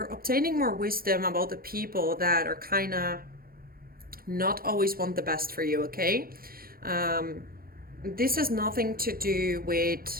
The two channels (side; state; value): left; late; 0.43 ms